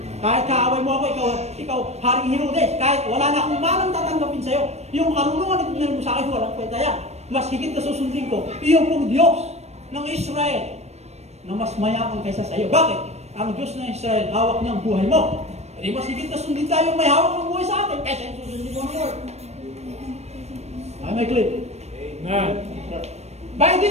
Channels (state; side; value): late; left; 0.31 ms